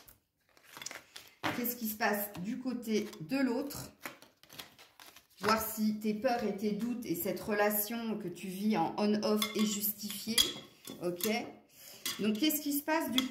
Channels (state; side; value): identical; both; correlation 1.00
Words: Qu'est-ce qui se passe du côté de l'autre? Voir si tes peurs et tes doutes et cette relation que tu vis en on-off est justifiée. Ok? Donc, qu'est-ce qui se passe du